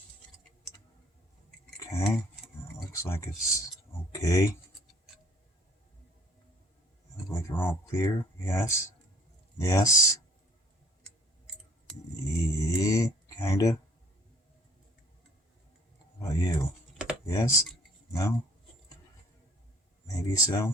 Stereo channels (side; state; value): both; normal; correlation 0.58